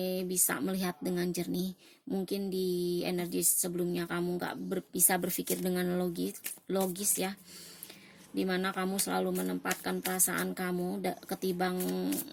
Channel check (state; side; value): identical; both; correlation 1.00